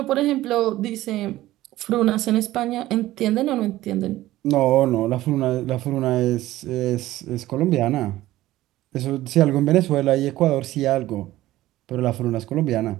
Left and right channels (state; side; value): quieter; left; 15.8 dB